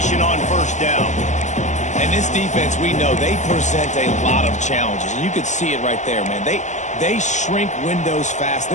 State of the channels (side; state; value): right; late; 0.35 ms